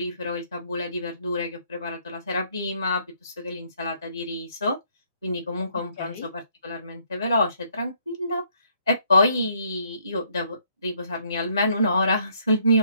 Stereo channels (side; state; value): both; inverted; correlation -0.68